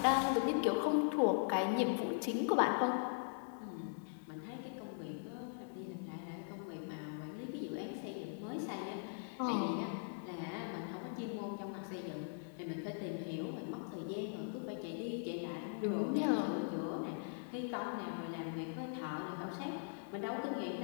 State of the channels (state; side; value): silent; right; digital silence